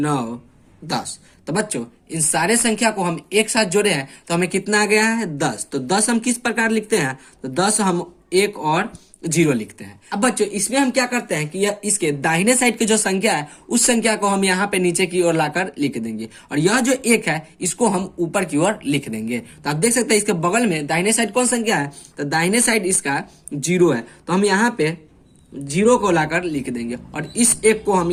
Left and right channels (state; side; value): identical; both; correlation 1.00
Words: 10। तो बच्चों, इन सारे संख्या को हम एक साथ जोड़े हैं तो हमें कितना आ गया है? 10। तो 10 हम किस प्रकार लिखते हैं? तो 10 हम 1 और 0 लिखते हैं। अब बच्चों इसमें हम क्या करते हैं कि यह इसके दाहिने साइड की जो संख्या है उस संख्या को हम यहाँ पे नीचे की ओर लाकर लिख देंगे, और यह जो 1 है इसको हम ऊपर की ओर लिख देंगे। तो आप देख सकते हैं इसके बगल में दाहिने साइड कौन संख्या है, तो दाहिने साइड इसका 0 है, तो हम यहाँ पे 0 को लाकर लिख देंगे और इस 1 को हम